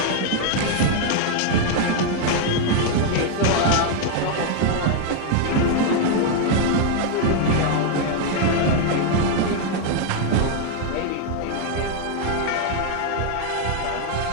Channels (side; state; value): both; different; correlation 0.00